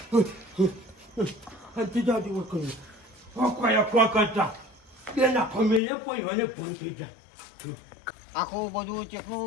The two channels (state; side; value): drops out; right; at 5.8 s